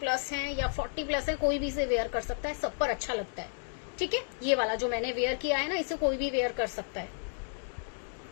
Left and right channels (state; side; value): silent; right; digital silence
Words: हैं या 40 प्लस है, कोई भी इसे वेयर कर सकता है, सब पर अच्छा लगता है, ठीक है। ये वाला जो मैंने वेयर किया है ना, इसे कोई भी वेयर कर सकता है।